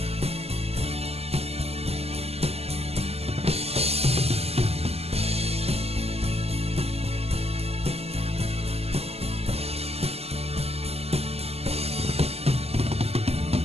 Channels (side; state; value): left; late; 0.29 ms